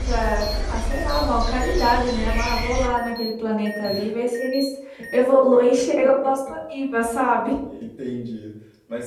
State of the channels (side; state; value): both; identical; correlation 1.00